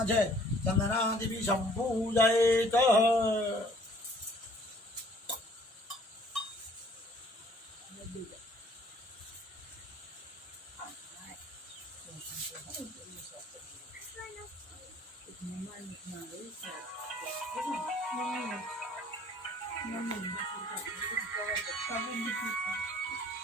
છે. ચંદનાદિભિ સંપૂજયેત.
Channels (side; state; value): both; normal; correlation 0.56